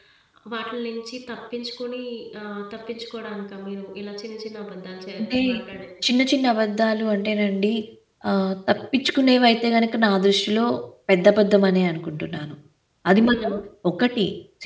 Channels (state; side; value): identical; both; correlation 1.00